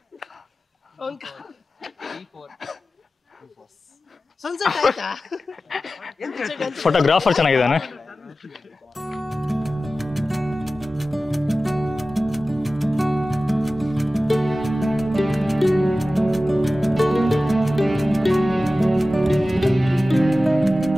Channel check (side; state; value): both; normal; correlation 0.95